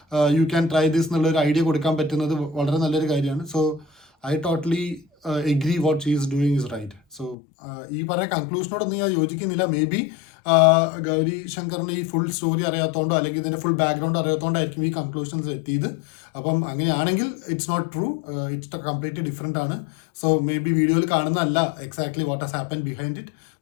യു ക്യാൻ ട്രൈ ദിസ് എന്നുള്ളൊരു ഐഡിയ കൊടുക്കാൻ പറ്റുന്നത് വളരെ നല്ലൊരു കാര്യമാണ്. So I totally agree what she is doing is right. So ഈ പറഞ്ഞ കൺക്ലൂഷനോടൊന്നും ഞാൻ യോജിക്കുന്നില്ല. മേ ബി ഗൗരി ശങ്കറിന് ഈ ഫുൾ സ്റ്റോറി അറിയാത്തതുകൊണ്ടോ അല്ലെങ്കിൽ ഇതിൻ്റെ ഫുൾ ബാക്ക്ഗ്രൗണ്ട് അറിയാത്തതുകൊണ്ടായിരിക്കും ഈ കൺക്ലൂഷൻസ് എത്തിയത്. അപ്പം അങ്ങനെയാണെങ്കിൽ it's not true, it's completely different ആണ്. സോ മേ ബി വീഡിയോയിൽ കാണുന്നതല്ല exactly what has happen behind it.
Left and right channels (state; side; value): drops out; right; at 7.4 s